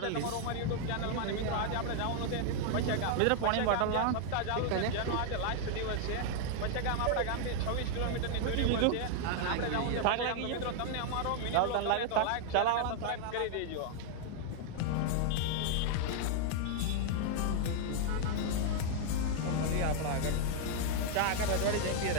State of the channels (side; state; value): both; different; correlation 0.00